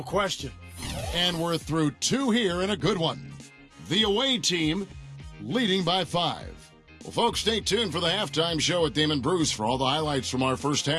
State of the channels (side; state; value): both; identical; correlation 1.00